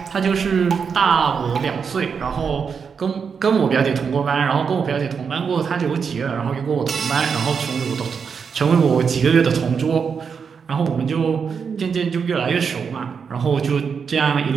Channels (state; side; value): quieter; left; 6.2 dB